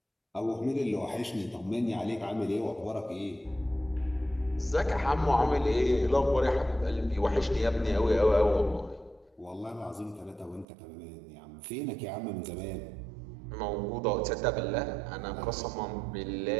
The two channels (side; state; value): left; drops out; at 10.7 s